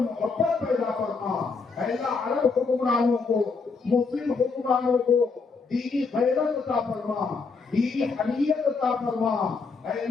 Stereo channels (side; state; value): right; quieter; 4.6 dB